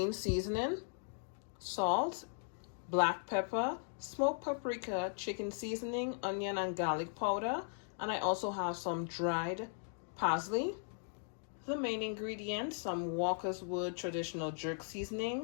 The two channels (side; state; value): right; silent; digital silence